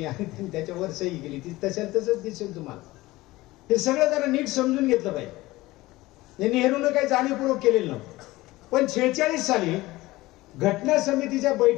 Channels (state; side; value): quieter; right; 19.0 dB